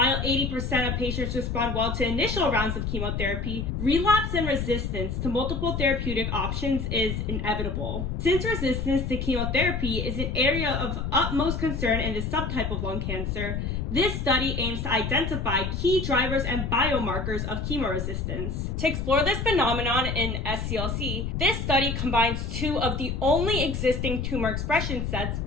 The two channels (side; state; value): left; noise; rumble, 2 dB below the sound